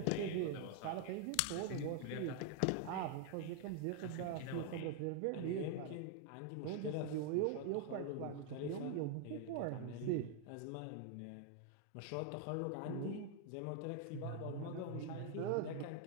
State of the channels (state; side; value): different; both; correlation 0.00